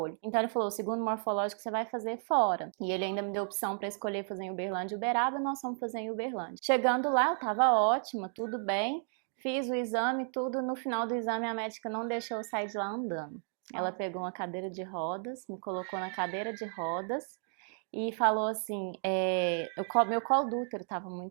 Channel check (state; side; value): silent; left; 56 dB below the other